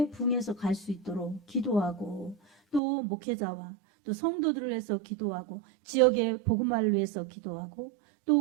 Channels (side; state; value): left; drops out; at 2.8 s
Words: 부흥해서 갈 수 있도록 기도하고 또 목회자와 또 성도들을 위해서 기도하고 지역의 복음화를 위해서 기도하고 또